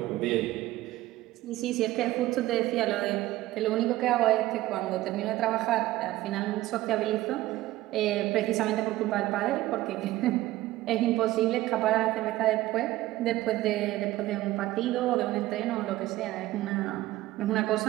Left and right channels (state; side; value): quieter; left; 16.4 dB